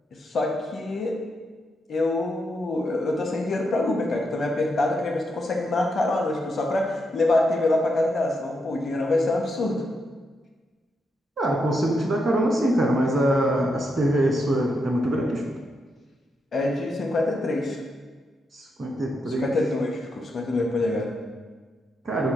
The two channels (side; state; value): both; normal; correlation 0.82